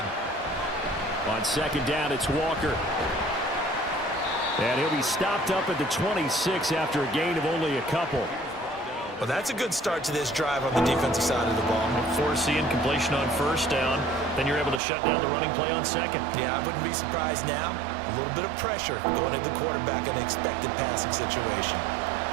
On second down, it's Walker. And he'll be stopped up at the 26 after a gain of only a couple. Well, that's a good start to this drive on the defensive side of the ball. Force the incompletion on first down. Then you're able to shut down the running play on second. Yeah, I wouldn't be surprised now. A little bit of pressure going at the quarterback in an expected passing situation.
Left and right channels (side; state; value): left; drops out; at 14.8 s